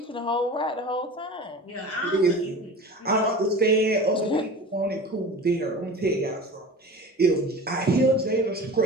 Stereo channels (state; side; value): normal; both; correlation 0.35